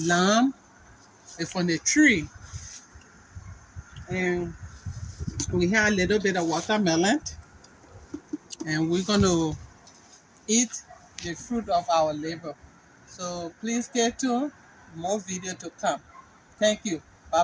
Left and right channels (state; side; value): identical; both; correlation 1.00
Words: lamb is from the tree, and we had a little bit of watermelon, and we're gonna eat the fruit of our labor. So please stay tuned. More video to come. Thank you. Bye